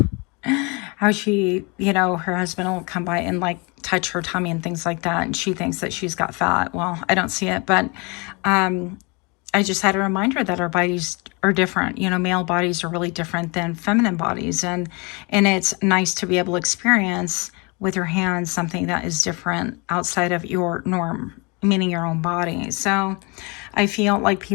how she, you know, her husband will come by and like touch her tummy and things like that. And she thinks that she's got fat. Well, I don't see it, but I just had a reminder that our bodies are different. You know, male bodies are really different than feminine bodies. And it's nice to be able to experience with your hands something that is different outside of your norm, meaning your own body. So I feel like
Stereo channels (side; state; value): right; quieter; 29.3 dB